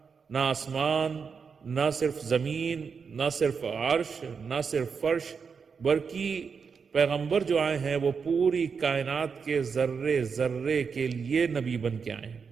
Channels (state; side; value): quieter; left; 5.8 dB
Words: نہ آسمان، نہ صرف زمین، نہ صرف عرش، نہ صرف فرش، بلکہ پیغمبر جو آئے ہیں وہ پوری کائنات کے ذرے ذرے کے لیے نبی بن کے آئے ہیں.